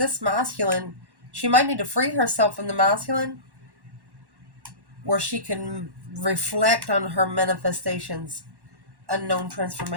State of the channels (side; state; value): left; late; 1.1 ms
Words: masculine, she might need to free herself from the masculine where she can reflect on her manifestations, unknown